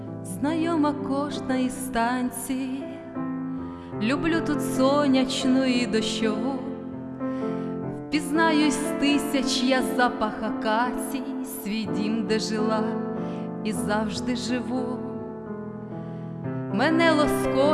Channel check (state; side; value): identical; both; correlation 1.00